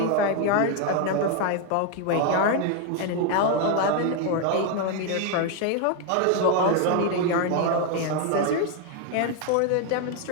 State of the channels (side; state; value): both; different; correlation 0.01